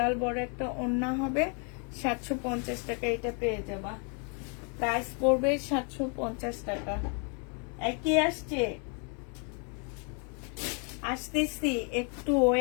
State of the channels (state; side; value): quieter; right; 39.1 dB